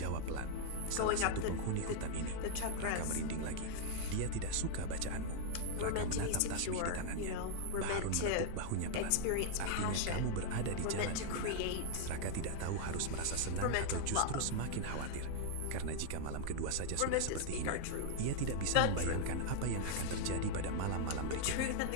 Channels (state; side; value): different; both; correlation -0.01